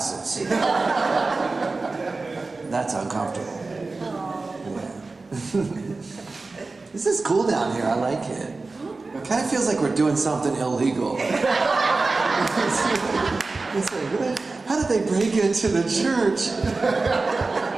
That's uncomfortable. Yeah. This is cool down here. I like it. It kind of feels like we're doing something illegal. It's like, how did they break into the church?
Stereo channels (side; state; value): left; quieter; 3.7 dB